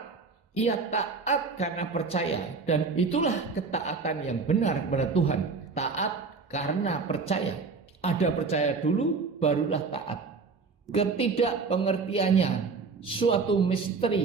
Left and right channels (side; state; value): left; quieter; 4.6 dB